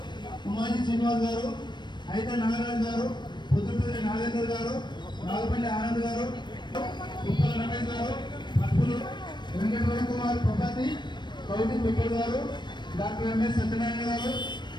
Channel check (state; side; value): late; right; 0.22 ms